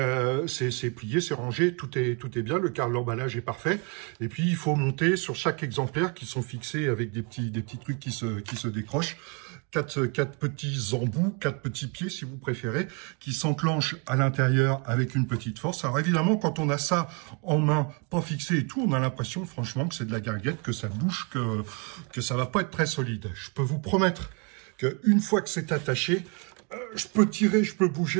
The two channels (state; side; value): quieter; left; 32.5 dB